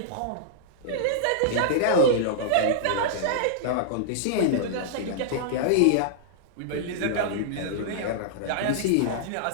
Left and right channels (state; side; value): different; both; correlation -0.02